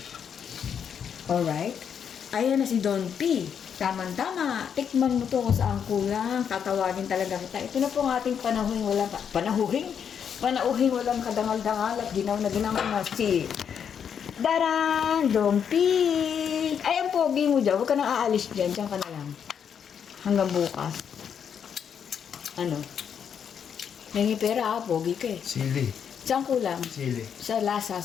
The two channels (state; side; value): quieter; right; 7.7 dB